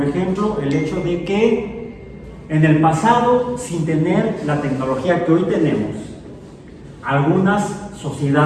ejemplo, el hecho de que en el pasado, sin tener la tecnología que hoy tenemos, algunas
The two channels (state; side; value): identical; both; correlation 1.00